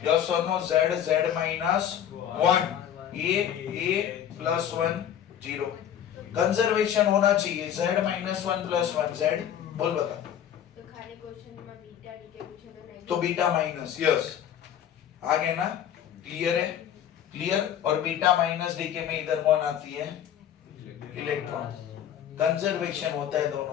यस और no? Z minus 1, A plus 1 0। Conservation होना चाहिए। Z माइनस 1 प्लस 1 Z बोल बता। तो खाली क्वेश्चन में बीटा डीके पूछे तो नहीं तो बीटा माइनस, यस आगे ना? क्लियर है? क्लियर। और बीटा माइनस डीके में इधर कौन आती है? इलेक्ट्रॉन। कंजर्वेशन होता है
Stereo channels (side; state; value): right; quieter; 9.8 dB